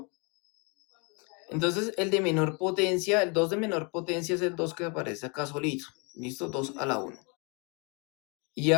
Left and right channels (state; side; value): quieter; right; 32.8 dB